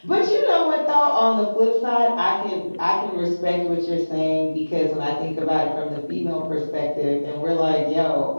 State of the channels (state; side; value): inverted; both; correlation -1.00